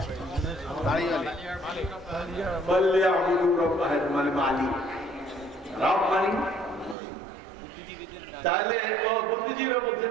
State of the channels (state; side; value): drops out; left; at 7.0 s